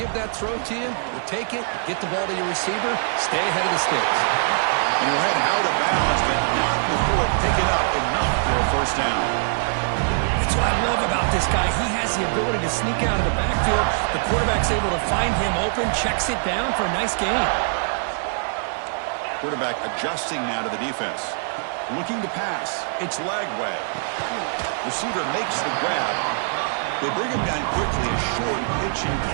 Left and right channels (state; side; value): silent; left; digital silence